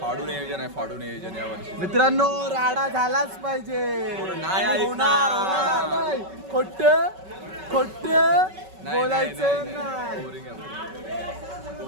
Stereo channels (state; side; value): late; left; 5.3 ms